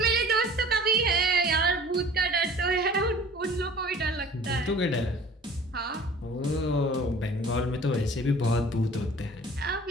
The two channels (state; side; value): normal; both; correlation 0.47